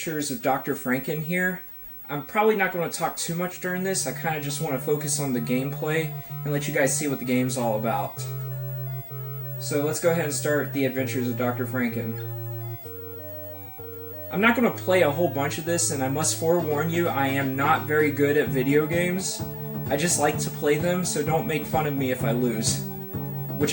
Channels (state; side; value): identical; both; correlation 1.00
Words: of Dr. Franken here. I'm probably not going to talk too much during this. I kind of just want to focus on the gameplay and let you guys see what the game's all about. So let's go ahead and start The Adventures of Dr. Franken. I'm not going to play a whole bunch of this, and I must forewarn you, I am not very good at video games. I just like to play them, so don't make fun of me if I lose.